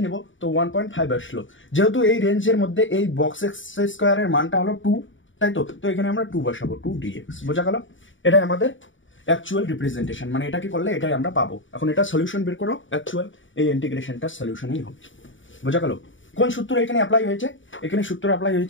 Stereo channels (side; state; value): right; late; 0.56 ms